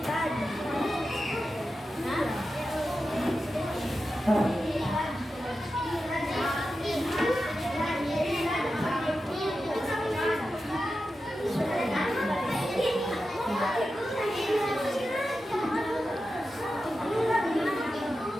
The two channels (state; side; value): normal; both; correlation 0.91